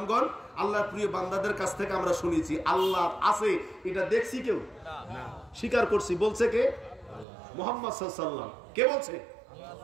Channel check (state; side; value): drops out; left; at 7.2 s